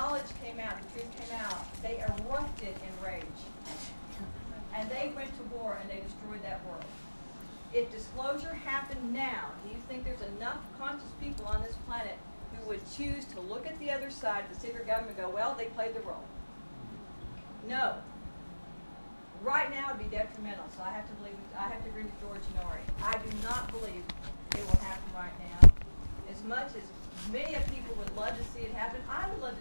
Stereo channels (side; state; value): both; inverted; correlation -1.00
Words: came out, the truth came out, they erupted in rage. And they went to war and they destroyed that world. If disclosure happened now, do you think there's enough conscious people on this planet who would choose to look at the other side of the secret government and go, well, they played the role? No. Right now it would be detrimental, so I have to agree with George and Ori. I do not believe it will happen right now. As much as many of people would love to see it happen, I would love